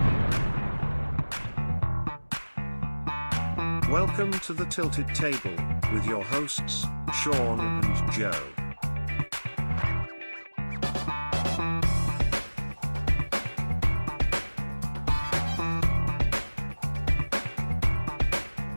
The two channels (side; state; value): both; inverted; correlation -1.00